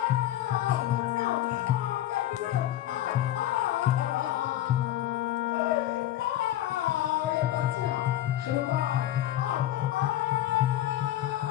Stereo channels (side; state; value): right; quieter; 13.2 dB